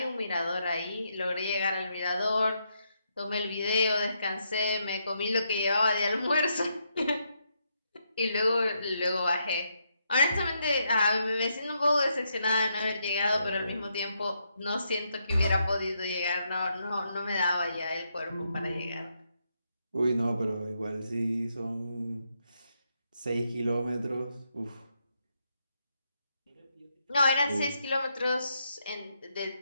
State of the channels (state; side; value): inverted; both; correlation -0.79